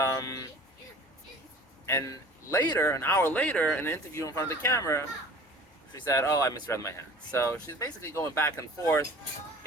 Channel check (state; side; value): normal; both; correlation 0.44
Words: later, an hour later, in an interview in front of the camera, she said, "Oh, I misread my hand." So she's basically going back and forth.